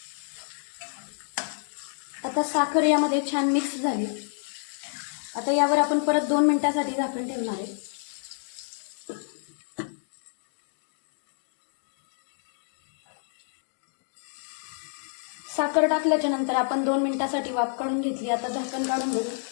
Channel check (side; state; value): right; silent; 59 dB below the other